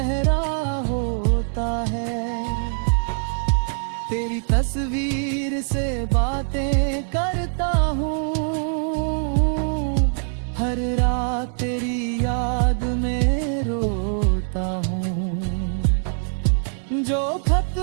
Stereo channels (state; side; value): silent; left; digital silence